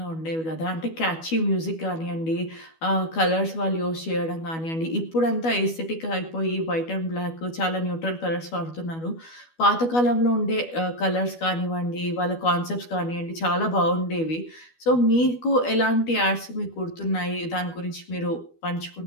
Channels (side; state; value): right; late; 12 ms